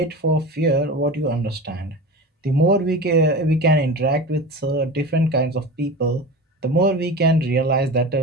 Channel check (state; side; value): normal; both; correlation 0.30